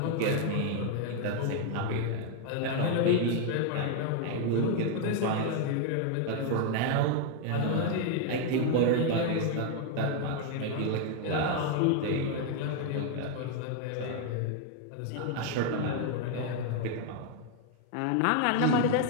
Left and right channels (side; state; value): both; different; correlation 0.00